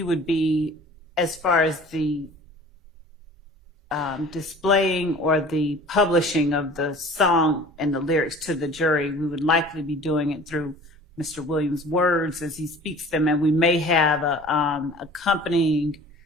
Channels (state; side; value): normal; both; correlation 0.45